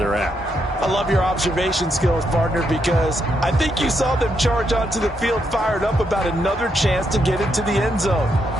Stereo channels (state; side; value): normal; both; correlation 0.79